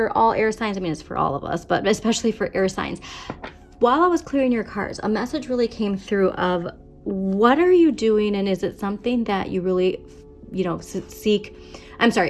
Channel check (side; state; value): both; identical; correlation 1.00